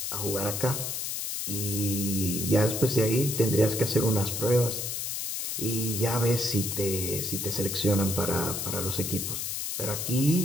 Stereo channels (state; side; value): noise; left; hiss, 3 dB below the sound